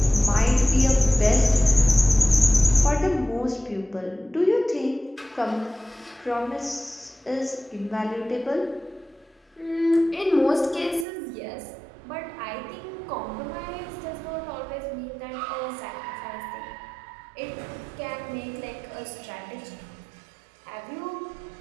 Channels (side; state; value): left; drops out; at 11.1 s